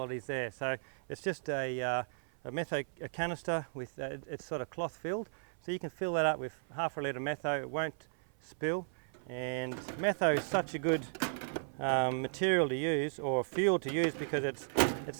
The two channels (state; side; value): silent; left; 54 dB below the other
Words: it is there. So it's just a canister with it's sort of cloth filled. So you can fill that up with half a litre metho. It won't spill. And metho is such a good material to use, or fuel to use, because it's